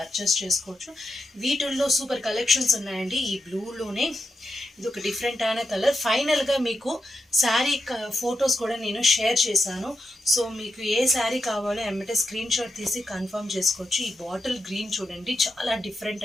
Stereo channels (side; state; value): both; normal; correlation 0.87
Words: చేసుకోవచ్చు. వీటిల్లో సూపర్ కలెక్షన్స్ ఉన్నాయండి. ఈ బ్లూలోనే ఇది ఒక డిఫరెంట్ అయిన కలర్. ఫైనల్గా మీకు శారీ ఫొటోస్ కూడా నేను షేర్ చేశాను. సో మీకు ఏ శారీ కావాలో ఎమ్మటే స్క్రీన్ షాట్ తీసి కన్ఫర్మ్ చేసుకోవచ్చు. ఈ బాటిల్ గ్రీన్ చూడండి, చాలా డిఫరెంట్